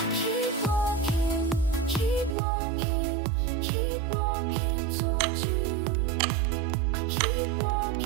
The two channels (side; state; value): left; drops out; at 2.4 s